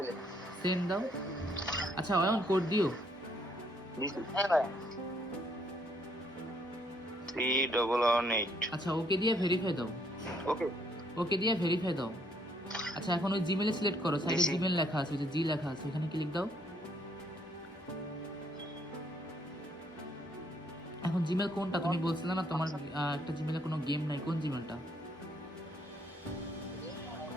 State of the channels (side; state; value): both; normal; correlation 0.68